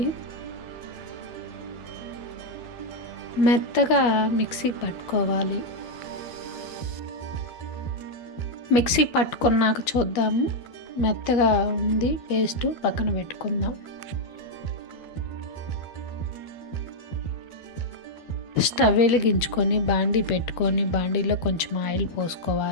మెత్తగా మిక్సీ పట్టుకోవాలి. మిక్సీ పట్టుకున్నాక చూద్దాము. మెత్తగా ఉంది పేస్ట్, పక్కన పెట్టుకుందాం. స్టవ్ వెలిగించుకొని బాండీ పెట్టుకొని బాండీలో కొంచెం ఆయిల్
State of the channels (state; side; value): late; right; 13 ms